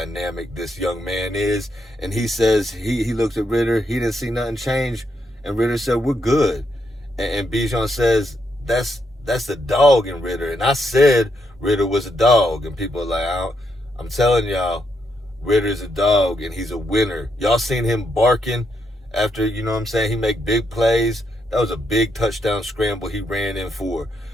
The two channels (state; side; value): normal; both; correlation 0.79